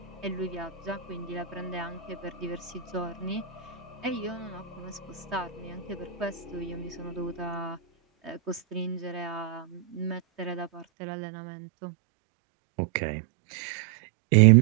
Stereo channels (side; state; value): left; drops out; at 10.9 s